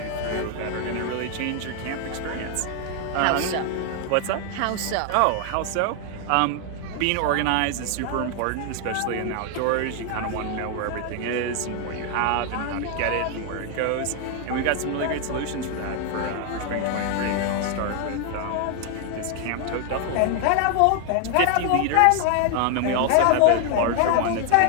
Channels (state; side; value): different; both; correlation 0.00